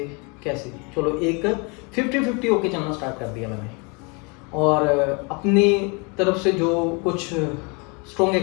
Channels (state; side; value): quieter; right; 31.3 dB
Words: कैसे। चलो एक 50-50 होके चलना स्टार्ट कर दिया मैंने, और अपनी तरफ से जो कुछ स्ट्रॉन्ग